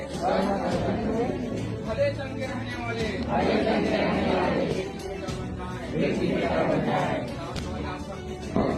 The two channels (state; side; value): identical; both; correlation 1.00